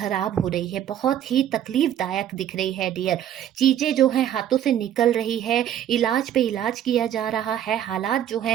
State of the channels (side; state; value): left; quieter; 10.7 dB